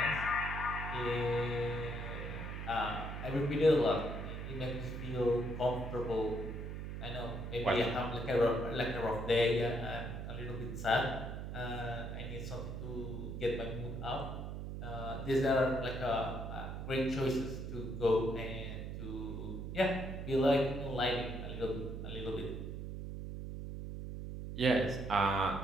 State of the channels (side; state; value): right; noise; hum, 6 dB below the sound